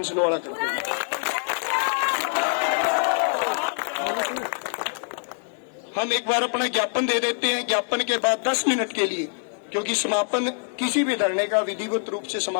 वाला कर देंगे। हम एक बार अपना ज्ञापन दे देते हैं, ज्ञापन के बाद 10 मिनट के लिए, क्योंकि समापन किसी भी धरने का विधिवत रूप से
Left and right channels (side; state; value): right; silent; 61 dB below the other